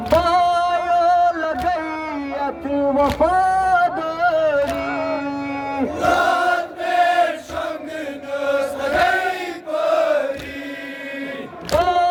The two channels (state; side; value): identical; both; correlation 1.00